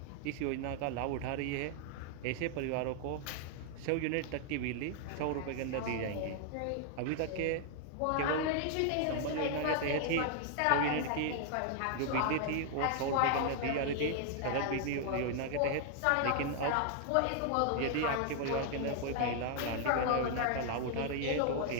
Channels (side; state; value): both; different; correlation 0.00